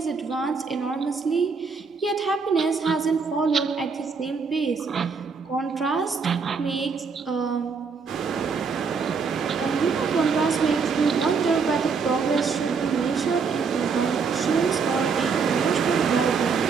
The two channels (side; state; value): left; quieter; 5.3 dB